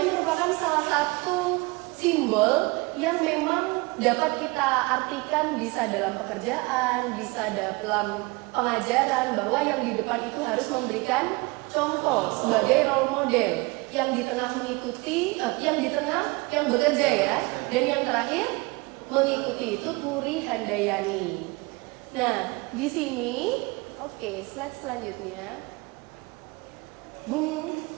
merupakan salah satu simbol yang memang dapat kita artikan bisa dalam pekerjaan, bisa dalam pengajaran, bahwa yang di depan itu harus memberikan contoh sebagai role model, yang di tengah mengikuti, yang bekerja ya, dan yang terakhir mengikuti itu Turi Handayani. Nah, di sini, oke, slide selanjutnya.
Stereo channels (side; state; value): left; quieter; 25.7 dB